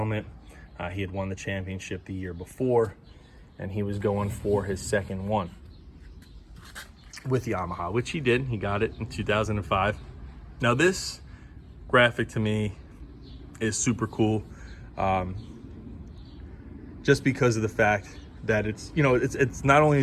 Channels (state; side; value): identical; both; correlation 1.00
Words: He had won the championship the year before, and he was going for his second one with Yamaha, which he did. He got it in 2005. Now this graphic to me is super cool, just because of the fact that it's, you know, it's not only